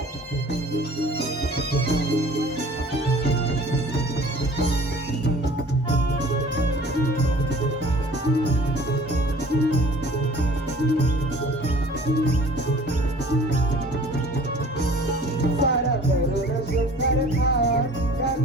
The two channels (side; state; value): both; normal; correlation 0.48